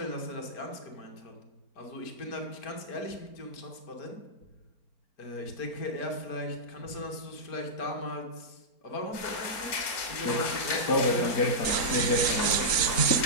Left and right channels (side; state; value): right; late; 4.4 ms